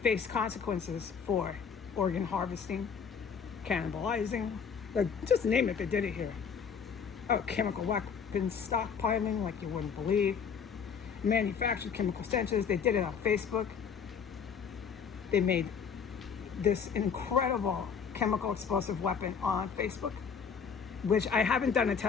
consequences for organ harvesting, cannibalizing, like, just name it, they did it here. Oh, chemical weapons stockpiling like you wouldn't believe. Manufactured chemical stenches. They did it on Facebook. They made this incredible chemical explosive weapon on Facebook, which I haven't done a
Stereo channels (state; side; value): quieter; right; 6.6 dB